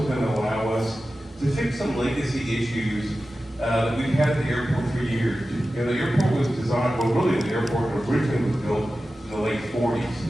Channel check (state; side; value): normal; both; correlation 0.94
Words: going to allow us to fix some legacy issues that we've had at the airport for years. The airport was designed, well, really the airport originally was built in the late